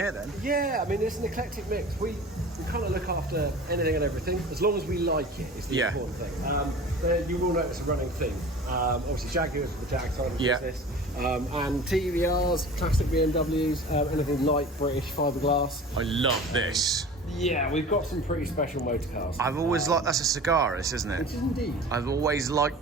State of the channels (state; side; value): normal; both; correlation 0.39